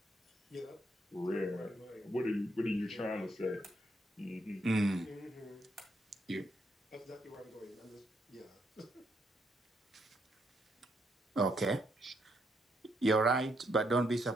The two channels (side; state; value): both; normal; correlation 0.76